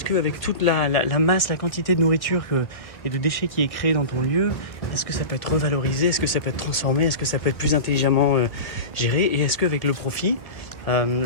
qu'avec toute la masse, la quantité de nourriture et de déchets qui est créée dans ton lieu, est-ce que ça peut être revalorisé? Est-ce que ça peut être transformé? Est-ce que ça peut être plus intelligemment géré? Et est-ce qu'avec le profit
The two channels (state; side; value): late; right; 1.8 ms